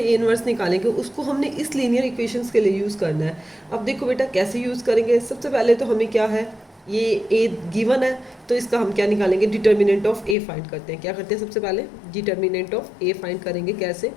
इनवर्स निकालेंगे उसको हमने इस लीनियर इक्वेशंस के लिए यूज़ करना है। अब देखो बेटा कैसे यूज़ करेंगे, सबसे पहले तो हमें क्या है ये ए गिवन है तो इसका हम क्या निकालेंगे डिटर्मिनेंट ऑफ ए फाइंड करते हैं। क्या करते हैं सबसे पहले डिटर्मिनेंट ऑफ ए फाइंड करेंगे, कैसे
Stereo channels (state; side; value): drops out; right; at 10.4 s